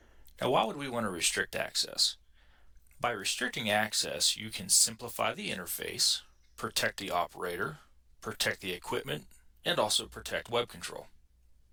Now, why would we want to restrict access? By restricting access, you can simplify the interface, protect the operator, protect the equipment, and also protect web control.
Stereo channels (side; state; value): both; identical; correlation 1.00